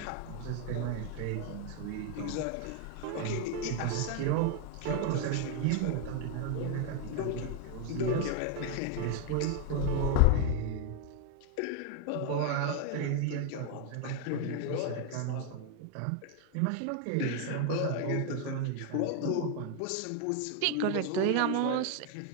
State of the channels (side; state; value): both; different; correlation 0.00